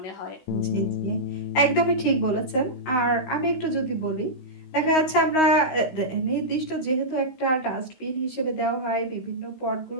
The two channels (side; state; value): right; late; 16 ms